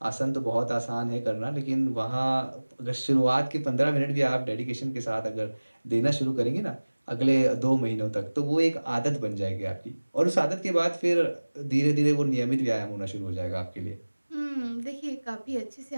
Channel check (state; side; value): inverted; both; correlation -1.00